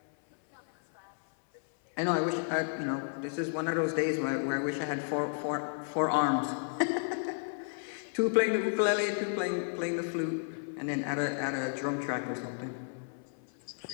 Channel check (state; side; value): silent; right; 56 dB below the other